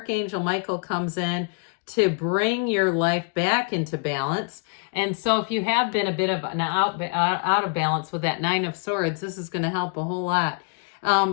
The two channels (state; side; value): quieter; right; 38.1 dB